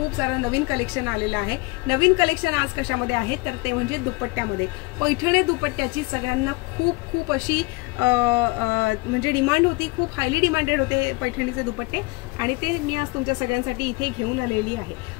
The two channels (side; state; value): right; quieter; 24.9 dB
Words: सारं नवीन कलेक्शन आलेलं आहे. नवीन कलेक्शन आज कशामध्ये आहे तर ते म्हणजे दुपट्ट्यामध्ये. पैठणी दुपट्ट्याची सगळ्यांना खूप खूप अशी म्हणजे डिमांड होती, खूप हायली डिमांडेड होते पैठणीचे दुपट्टे, आणि ते मी आज तुमच्या सगळ्यांसाठी इथे घेऊन आलेली आहे.